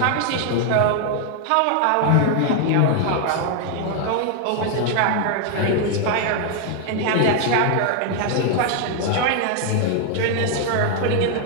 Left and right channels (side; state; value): both; different; correlation 0.00